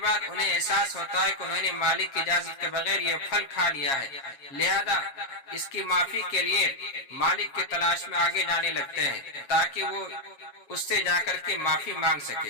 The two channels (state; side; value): late; right; 7.3 ms